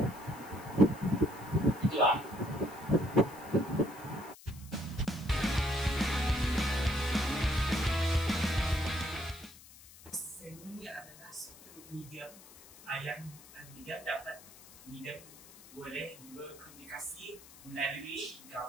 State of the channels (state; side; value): noise; left; hiss, 20 dB below the sound